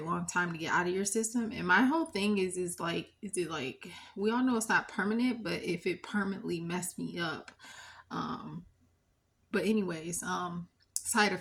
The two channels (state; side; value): identical; both; correlation 1.00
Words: long time to get out of your system. And my whole thing is it like we all know it's not permanent, but if it permanently messed me up, um, but anyways, side